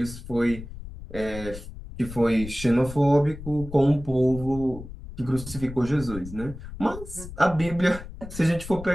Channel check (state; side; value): noise; left; rumble, 12 dB below the sound